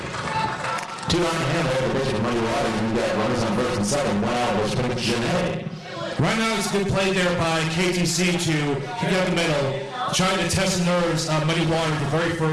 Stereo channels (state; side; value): identical; both; correlation 1.00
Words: 2 on hand there for pitching Muddy Waters. We've got runners on first and second. 1 out, which brings Janae. Right now, it's a good play there by KTC to kick out the middle, trying to test the nerves of Muddy Waters, the very